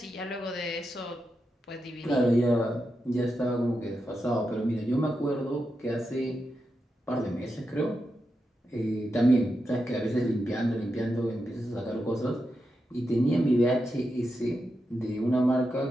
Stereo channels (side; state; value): both; normal; correlation 0.87